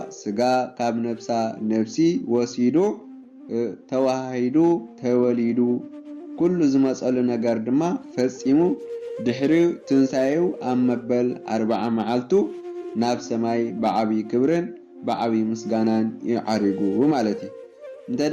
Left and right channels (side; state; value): both; identical; correlation 1.00